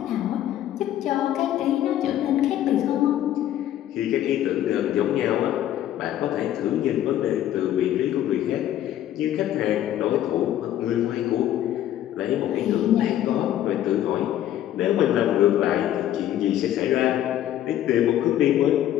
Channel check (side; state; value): right; quieter; 12.1 dB